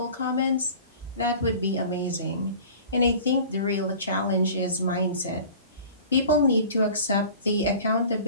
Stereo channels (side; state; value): both; inverted; correlation -0.42